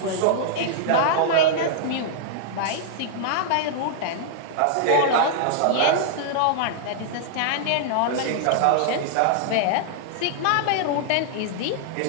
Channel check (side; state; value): both; different; correlation -0.01